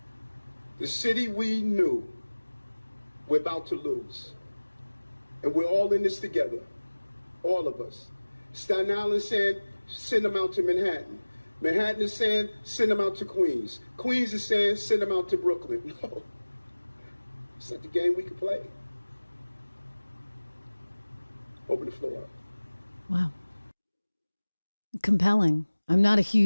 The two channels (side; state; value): both; inverted; correlation -1.00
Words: the city we knew we're about to lose. And we're all in this together, all of us. Staten Island is saying, send them out to Manhattan. Manhattan is saying, send them out to Queens. Queens is saying, send them out to Brooklyn. No, it's not the game we can play. Open the floor up. Wow. Compelling. I'm not a